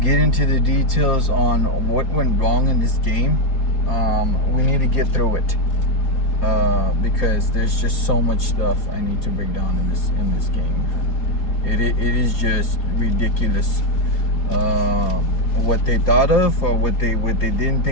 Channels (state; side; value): late; right; 4.3 ms